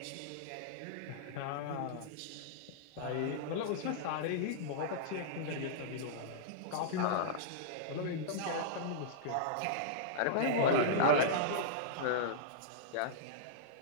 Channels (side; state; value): both; different; correlation -0.03